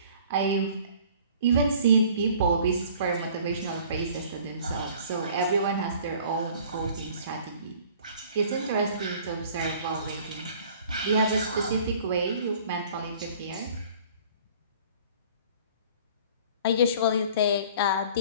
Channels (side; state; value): both; inverted; correlation -0.51